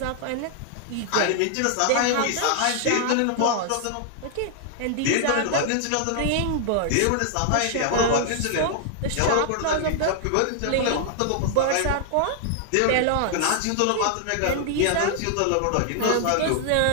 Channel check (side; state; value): both; different; correlation 0.00